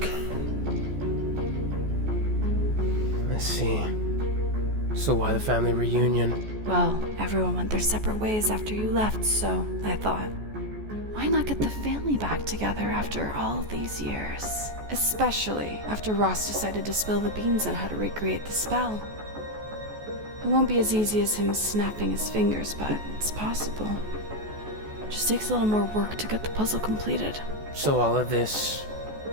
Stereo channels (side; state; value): left; late; 14 ms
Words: I see. So why the family reunion? Well, everyone went their separate ways after you left, so I thought, why not get the family back together after all these years? Especially after Ross decided to spill the beans on how to recreate the spell. It won't be as easy as him snapping his fingers, but it's possible. Just takes a little more work to get the puzzle completed. So all of this,